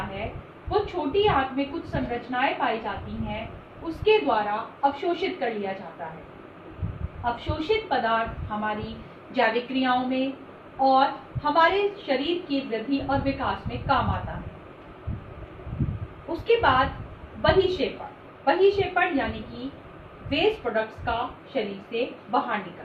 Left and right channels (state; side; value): identical; both; correlation 1.00